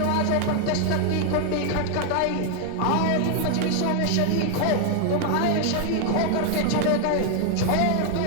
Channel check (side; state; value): both; different; correlation 0.00